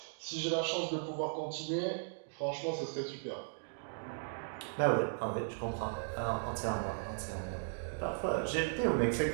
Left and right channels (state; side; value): silent; left; digital silence